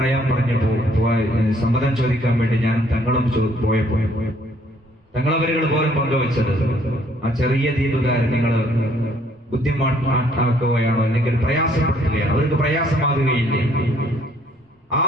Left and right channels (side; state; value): both; normal; correlation 0.64